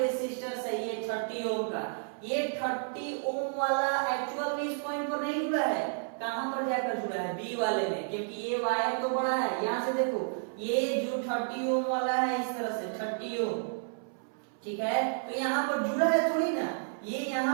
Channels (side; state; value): left; silent; 57 dB below the other